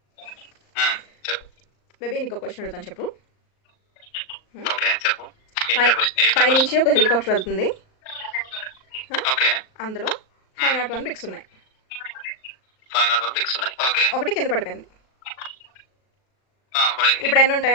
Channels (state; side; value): late; right; 38 ms